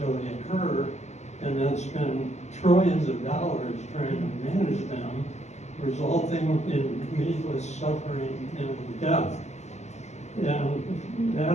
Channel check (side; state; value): right; late; 0.33 ms